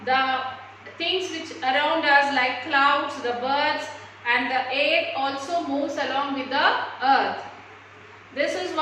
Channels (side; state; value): both; identical; correlation 1.00